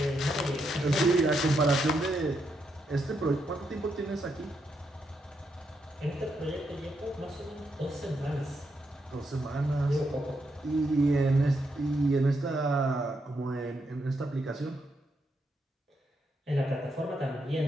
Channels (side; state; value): both; normal; correlation 0.80